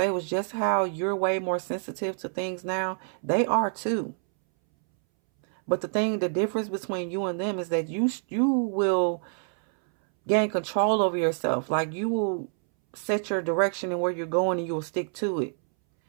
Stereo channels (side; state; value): left; silent; 60 dB below the other